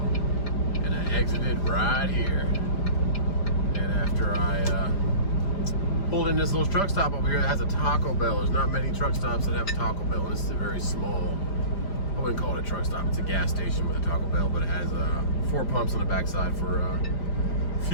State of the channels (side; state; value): right; late; 5.0 ms